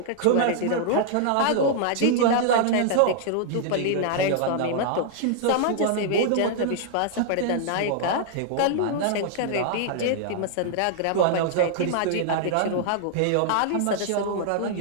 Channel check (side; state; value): both; different; correlation -0.01